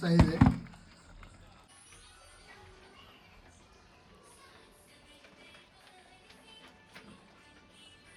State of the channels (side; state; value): both; identical; correlation 1.00